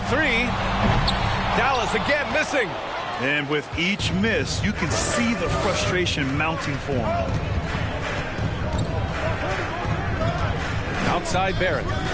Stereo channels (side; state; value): both; identical; correlation 1.00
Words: 3. Dallas again missing. And with each miss, you can see the frustration mounting for him. Outside Barrett.